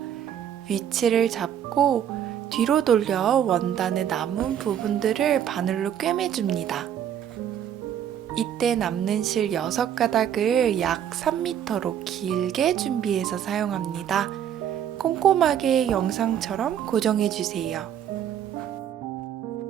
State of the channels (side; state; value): left; quieter; 9.6 dB